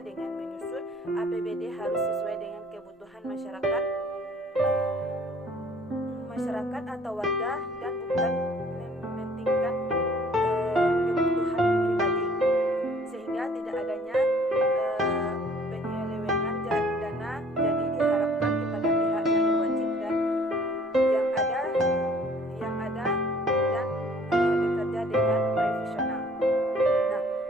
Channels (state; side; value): normal; both; correlation 0.56